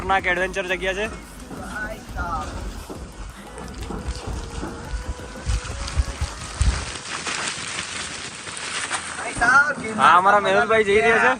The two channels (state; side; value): identical; both; correlation 1.00